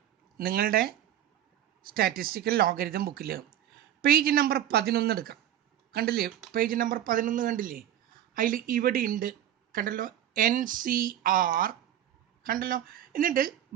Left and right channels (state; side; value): quieter; left; 11.4 dB